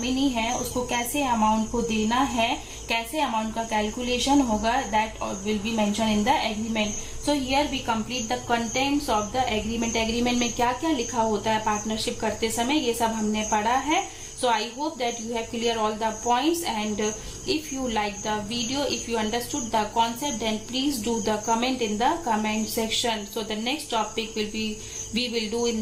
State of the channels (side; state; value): both; identical; correlation 1.00